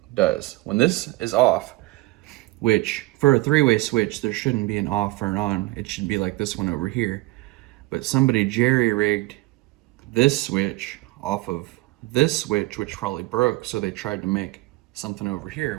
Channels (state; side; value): quieter; left; 20.6 dB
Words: does. When this is off, which for a three-way switch, there shouldn't be an off or an on. It should be like this one over here. But somebody jerry-rigged this switch off of this switch, which probably broke, so they tried to make something over